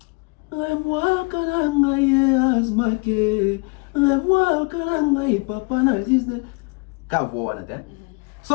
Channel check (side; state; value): right; quieter; 30.9 dB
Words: revoir kalanga ye asmake revoir kalanga ye papa na Disney ka voilà te.